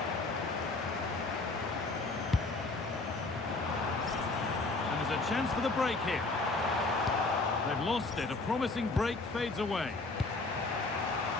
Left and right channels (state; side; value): quieter; right; 3.4 dB